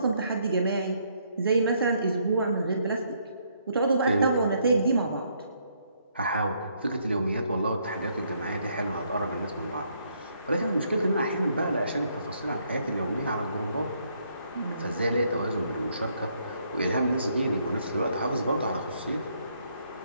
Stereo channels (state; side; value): inverted; both; correlation -0.71